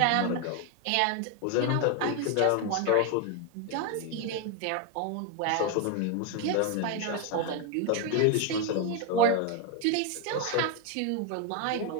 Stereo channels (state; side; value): different; both; correlation 0.01